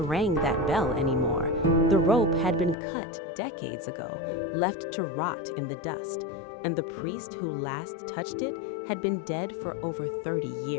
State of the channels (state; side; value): drops out; right; at 2.8 s